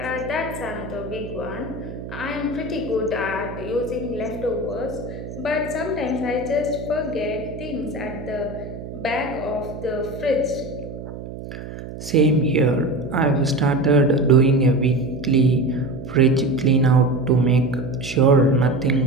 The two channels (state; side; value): noise; right; hum, 11 dB below the sound